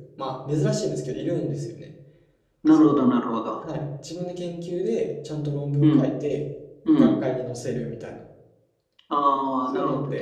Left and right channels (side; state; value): both; identical; correlation 1.00